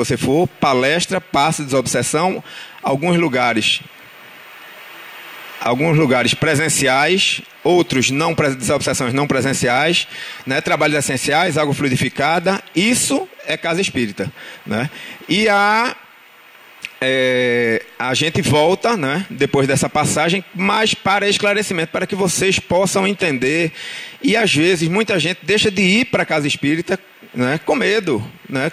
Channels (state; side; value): normal; both; correlation 0.96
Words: for, palestra, passe, desobsessão, alguns lugares presenciais, outros não, desobsessões não presenciais, né? Trabalhos essenciais, água fluidificada, isso é casa espírita, né? E a gente volta, né, depois dessa passagem, mas para esclarecimento, para que vocês possam entender. E às vezes muita gente deixa de ir para a casa espírita, né, com medo, né,